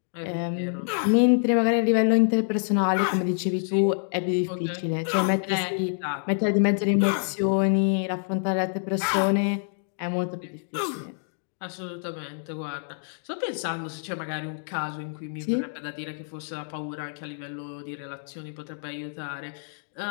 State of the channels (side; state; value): right; silent; digital silence